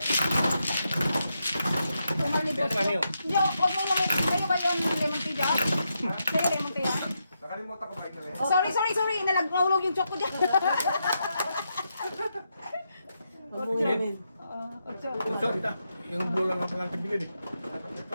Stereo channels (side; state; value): both; inverted; correlation -0.83